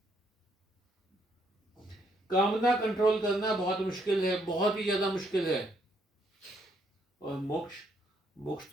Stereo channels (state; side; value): normal; both; correlation 0.72